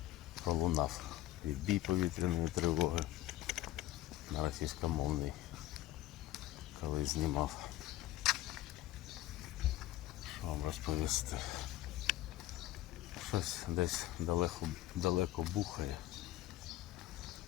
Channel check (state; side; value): quieter; right; 14.9 dB